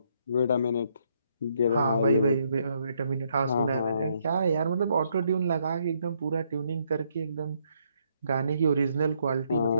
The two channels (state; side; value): inverted; both; correlation -0.73